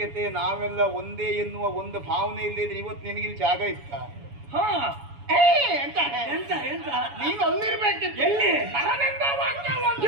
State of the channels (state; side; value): late; left; 7.1 ms